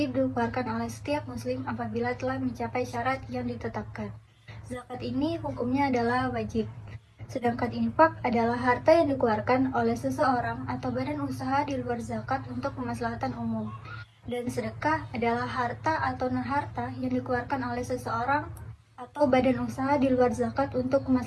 dikeluarkan oleh setiap muslim apabila telah mencapai syarat yang ditetapkan. Zakat ini hukumnya adalah wajib. Sedangkan infak adalah harta yang dikeluarkan oleh seseorang atau badan usaha di luar zakat untuk kemaslahatan umum. Dan sedekah adalah harta atau non-harta yang dikeluarkan oleh seseorang atau badan usaha di luar zakat untuk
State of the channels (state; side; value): identical; both; correlation 1.00